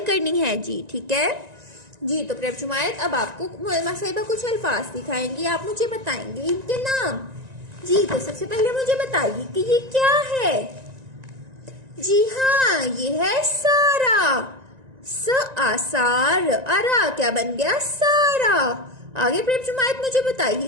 करनी है जी, ठीक है जी। तो प्रेम शुमायत, अब आपको मोलमा साहिबा कुछ अल्फाज दिखाएंगी, आप मुझे बताएंगे इनके नाम जी। तो सबसे पहले मुझे बताइए कि ये क्या है। जी हाँ, ये है सारा। स आसार, अरा क्या बन गया, सारा। आगे प्रेम शुमायत मुझे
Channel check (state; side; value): late; left; 1.9 ms